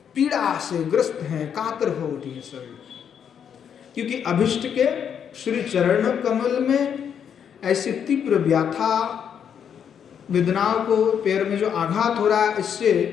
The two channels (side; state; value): right; quieter; 8.1 dB